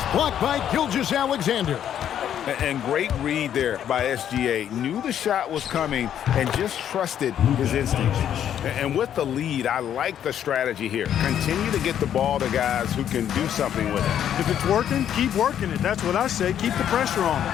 blocked by Gilgeous-Alexander. And great read there by SGA. Knew the shot was coming and just trusted his instincts. And with the lead, I like the strategy here. Continue to get the ball to guys who can do something with it. If it's working, keep working it. That's what I say. Keep the pressure on.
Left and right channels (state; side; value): quieter; right; 9.9 dB